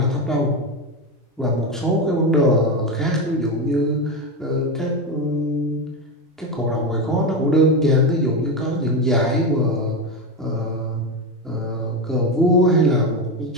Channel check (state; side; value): normal; both; correlation 0.15